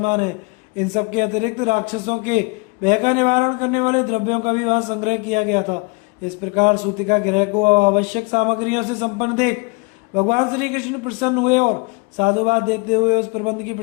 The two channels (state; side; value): quieter; right; 28.7 dB